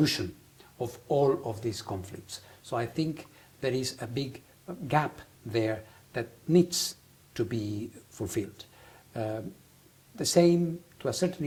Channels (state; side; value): identical; both; correlation 1.00